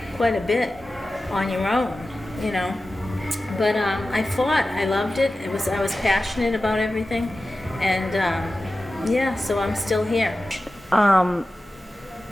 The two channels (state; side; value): normal; both; correlation 0.94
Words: quite a bit on your own, But I fought. I loved it. I was passionate about everything, and so I'm still here.